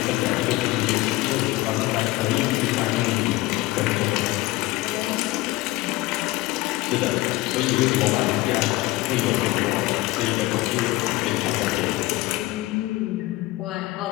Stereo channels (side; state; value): right; quieter; 18.9 dB